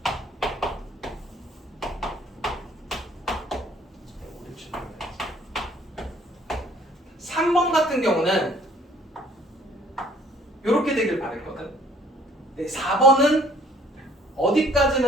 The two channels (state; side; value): normal; both; correlation 0.58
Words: 삼 번 같은 경우는 이렇게 되길 바랬거든. 4번은